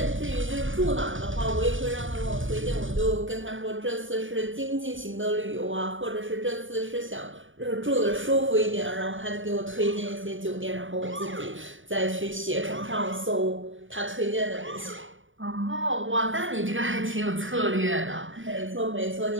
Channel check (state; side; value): late; left; 0.57 ms